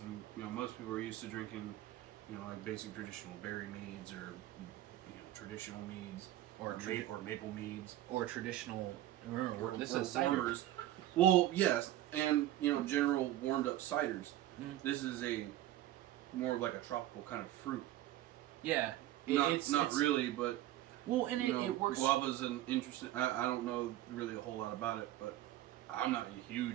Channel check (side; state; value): left; quieter; 14.1 dB